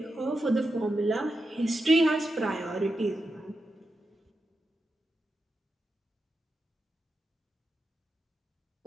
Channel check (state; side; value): normal; both; correlation 0.88